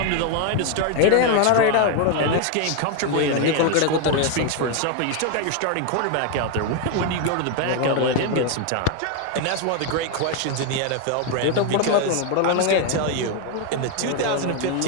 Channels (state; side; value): different; both; correlation 0.01